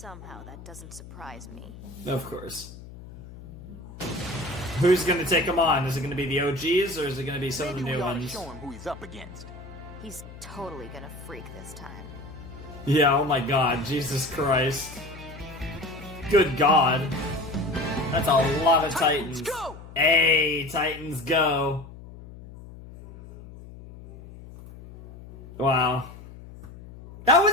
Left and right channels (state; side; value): noise; left; hum, 16 dB below the sound